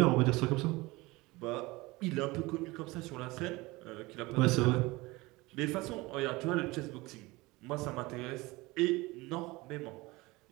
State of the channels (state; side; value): quieter; left; 22.0 dB